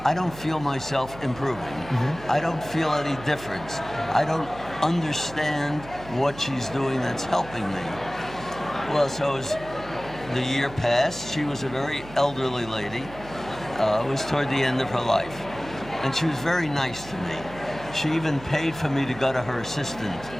I don't feel myself improving. I don't feel any difference. I don't understand what she's doing that's helping me. Well, so as the year passed, she was a very elderly lady. It was toward the end of her life. And she was very nice to me. She even paid for me to go to her assistant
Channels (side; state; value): right; noise; hum, 16 dB below the sound